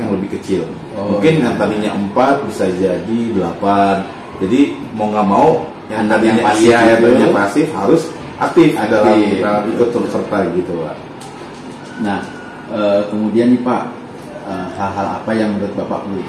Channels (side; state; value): both; identical; correlation 1.00